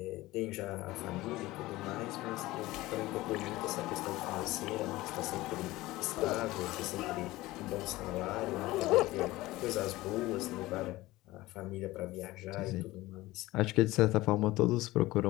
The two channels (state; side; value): quieter; right; 18.4 dB